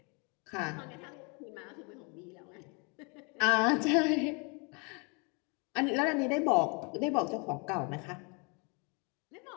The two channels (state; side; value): quieter; right; 32.7 dB